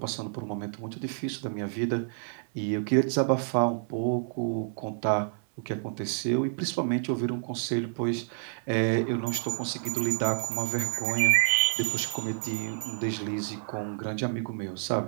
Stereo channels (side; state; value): left; silent; digital silence